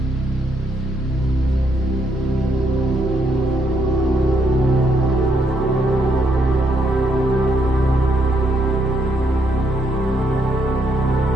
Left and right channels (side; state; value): both; normal; correlation 0.75